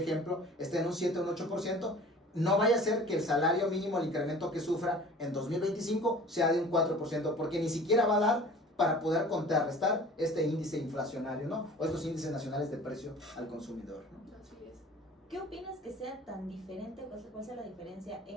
ejemplo, esté en un 7 o un 8%, no vaya a ser que el salario mínimo, el incremento que sufra en 2025 sea de un 4%, porque ni siquiera va a dar para poder contrarrestar este índice inflacionario, ¿no? O estos índices nacionales de precio al consumidor, ¿no? Así es. ¿Qué opinas que sea tan diferente, cuál sea la diferencia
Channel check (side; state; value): both; normal; correlation 0.45